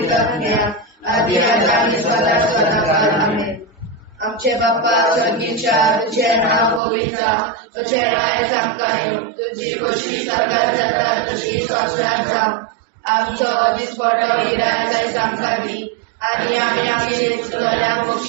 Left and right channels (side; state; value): left; drops out; at 6.8 s